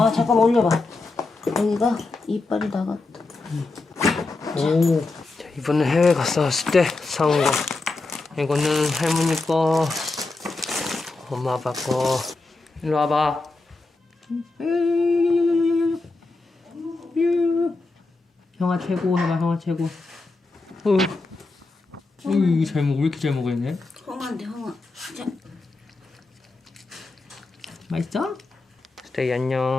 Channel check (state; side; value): quieter; right; 3.5 dB